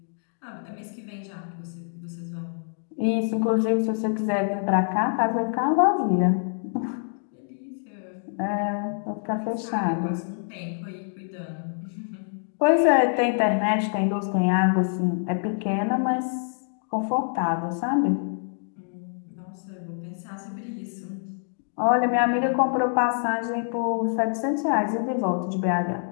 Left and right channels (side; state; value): right; silent; digital silence